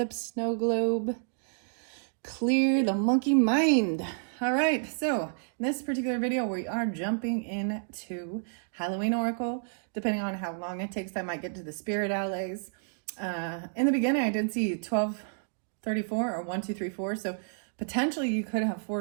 snow globe clear the monkey mind. All right, so in this particular video, we are jumping into Halloween Oracle. Depending on how long it takes, I might get to the spirit allies. In the beginning, I did see 1234 or 1234, so potentially you could have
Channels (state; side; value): silent; left; digital silence